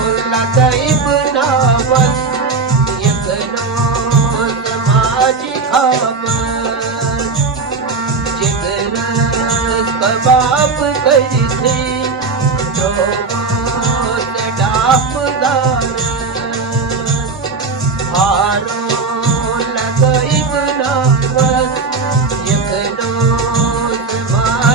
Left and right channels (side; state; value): left; quieter; 4.3 dB